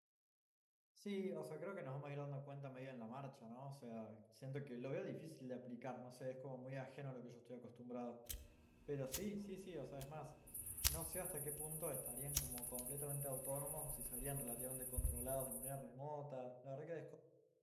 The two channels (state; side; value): identical; both; correlation 1.00